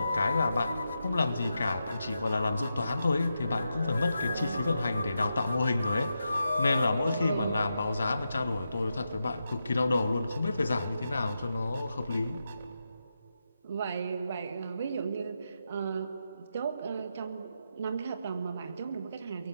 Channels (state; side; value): inverted; both; correlation -0.87